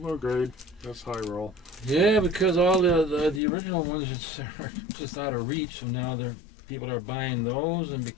grade. That's high roll. Yeah, because all the original ones are just out of reach, so now people are buying those, and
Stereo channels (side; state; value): right; drops out; at 3.4 s